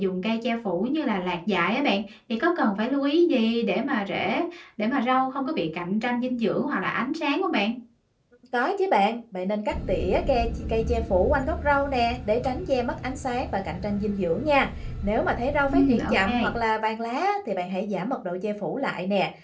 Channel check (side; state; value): both; identical; correlation 1.00